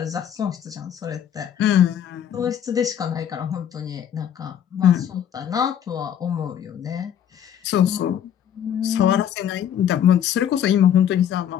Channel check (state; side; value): quieter; right; 9.5 dB